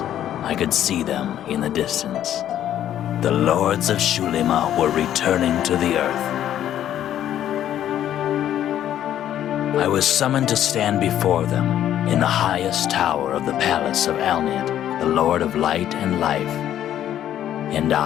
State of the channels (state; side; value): quieter; right; 11.2 dB